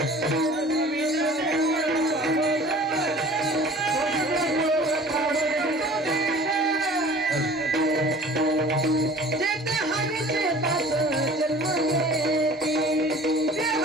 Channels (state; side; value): normal; both; correlation 0.45